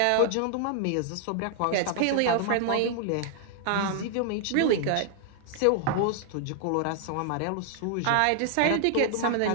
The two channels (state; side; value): different; both; correlation 0.00